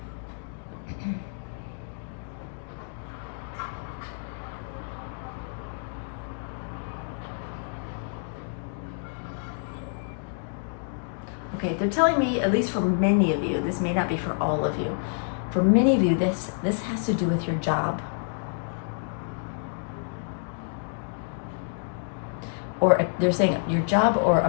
okay, they're telling me, at least for many of you, this may not be for all of you. For many of you, this has to do with your job. Or they're saying your job or a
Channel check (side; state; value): right; silent; digital silence